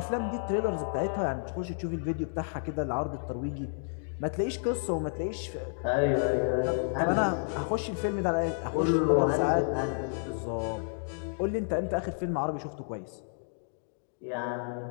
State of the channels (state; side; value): silent; right; digital silence